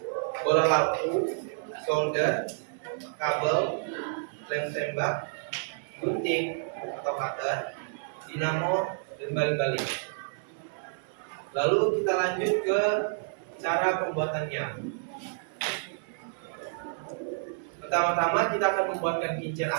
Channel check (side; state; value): left; silent; 58 dB below the other